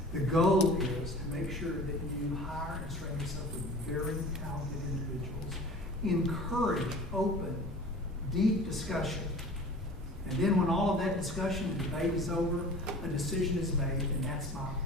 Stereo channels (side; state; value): both; normal; correlation 0.42